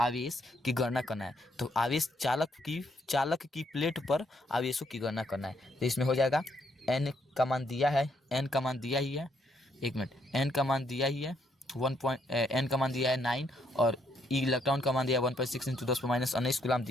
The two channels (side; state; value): both; normal; correlation 0.73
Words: की गणना करना है। तो आवेश चालक की प्लेट पर आवेशों की गणना करना है। तो इसमें हो जाएगा एन का मान दिया है, एन का मान दिया ही है, एक मिनट, एन का मान दिया ही है एन का मान दिया है 9, और इलेक्ट्रॉन का मान दिया है 1.6 इंटू 10 पे माइनस 19 गुलाम